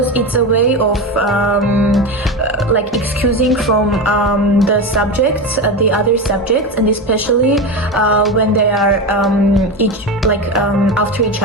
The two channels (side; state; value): both; normal; correlation 0.20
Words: it's a way of like excusing from the subjects, the other subjects, and especially when they are each after each